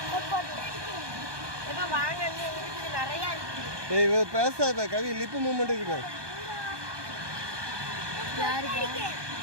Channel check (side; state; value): left; late; 1.2 ms